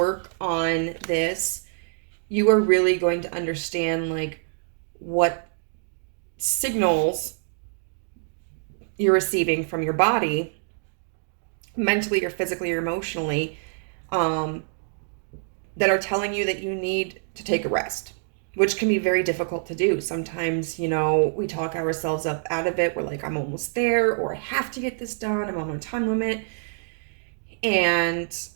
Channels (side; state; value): left; silent; digital silence